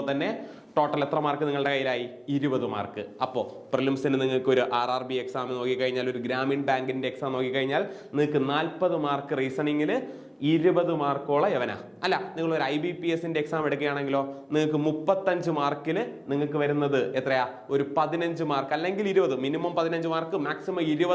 തന്നെ ടോട്ടൽ എത്ര മാർക്ക് നിങ്ങളുടെ കയ്യിലായി? 20 മാർക്ക്. അപ്പോൾ പ്രിലിംസിന് നിങ്ങൾക്ക് ഒരു RRB എക്സാം നോക്കിക്കഴിഞ്ഞാൽ, ഒരു ഗ്രാമീൺ ബാങ്കിന്റെ എക്സാം നോക്കിക്കഴിഞ്ഞാൽ നിങ്ങൾക്ക് 40 മാർക്ക് റീസണിങ്ങിൽ, 20 മാർക്കോളം യവന. അല്ല, നിങ്ങൾ ഒരു IBPSന്റെ എക്സാം എടുക്കുകയാണെങ്കിലോ നിങ്ങൾക്ക് 35 മാർക്കിൽ നിങ്ങൾക്ക് വരുന്നത് എത്രയാ? ഒരു 15 മാർക്ക് അല്ലെങ്കിൽ 20, മിനിമം 15 മാർക്ക്, മാക്സിമം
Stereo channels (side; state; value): both; identical; correlation 1.00